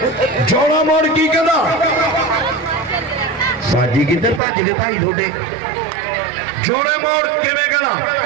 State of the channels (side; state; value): left; drops out; at 4.4 s